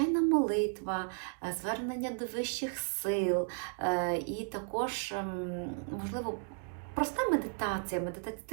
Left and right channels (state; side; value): silent; left; 55 dB below the other